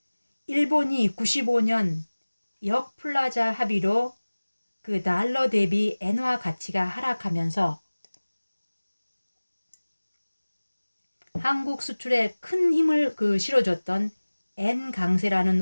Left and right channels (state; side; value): inverted; both; correlation -1.00